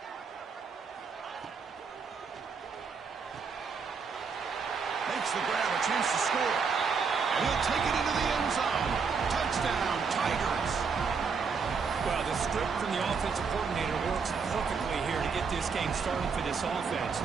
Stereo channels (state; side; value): quieter; left; 5.5 dB